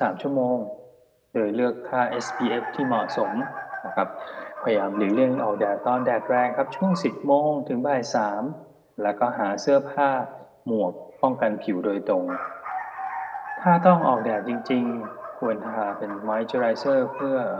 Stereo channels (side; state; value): both; identical; correlation 1.00